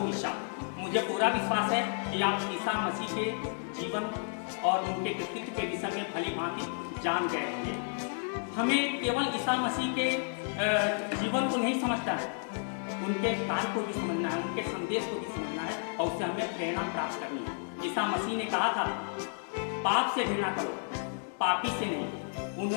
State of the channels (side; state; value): right; silent; 57 dB below the other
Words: ईसा। मुझे पूरा विश्वास है कि आप ईसा मसीह के जीवन और उनके कृतित्व के विषय में भली भांति जान गए होंगे। हमें केवल ईसा मसीह के जीवन को नहीं समझना है, उनके कार्य को भी समझना है, उनके संदेश को भी समझना है और उससे हमें प्रेरणा प्राप्त करनी है। ईसा मसीह ने कहा था, पाप से घृणा करो, पापी से नहीं।